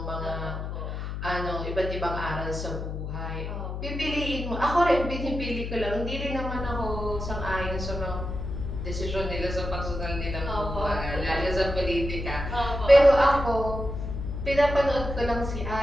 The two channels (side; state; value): left; noise; hum, 5 dB below the sound